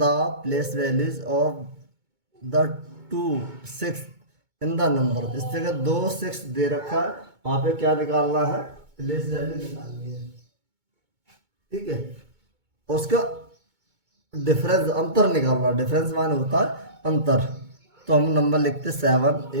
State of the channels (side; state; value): left; late; 2.2 ms